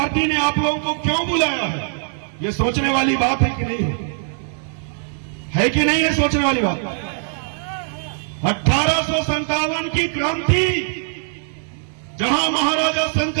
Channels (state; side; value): silent; left; digital silence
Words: ने आप लोगों को क्यों बुलाया है? ये सोचने वाली बात है कि नहीं है कि नहीं है सोचने वाली बात? 1857 की क्रांति, जहां महाराजा